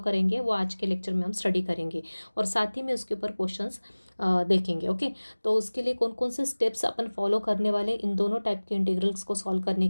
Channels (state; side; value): inverted; both; correlation -1.00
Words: करेंगे वो आज के लेक्चर में हम स्टडी करेंगे और साथ ही में उसके ऊपर क्वेश्चंस देखेंगे। ओके, तो उसके लिए कौन कौन से स्टेप्स अपन फॉलो करने वाले इन दोनों टाइप के इंटीग्रल्स को सॉल्व करने